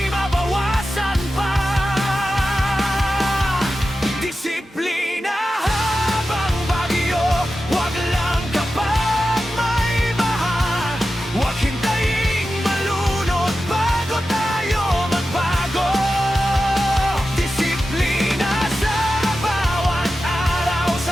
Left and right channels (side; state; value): both; normal; correlation 0.92